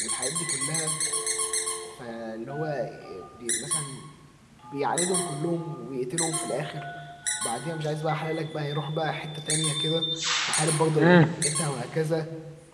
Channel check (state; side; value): identical; both; correlation 1.00